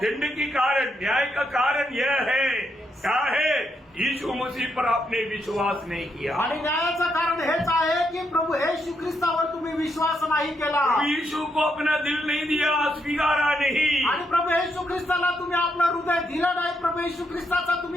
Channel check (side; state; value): both; normal; correlation 0.79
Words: की कारण, न्याय का कारण यह है, क्या है? यीशु मसीह पर आपने विश्वास नहीं किया. आणि न्यायाचं कारण हेच आहे की प्रभू येशू ख्रिस्तावर तुम्ही विश्वास नाही केला. यीशु को अपना दिल नहीं दिया, स्वीकारा नहीं. आणि प्रभू येशू ख्रिस्ताला तुम्ही आपलं हृदय दिलं नाही. प्रभू येशू ख्रिस्ताचा